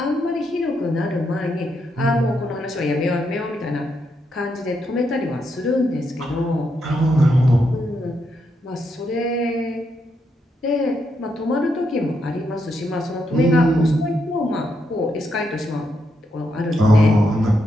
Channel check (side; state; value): both; normal; correlation 0.80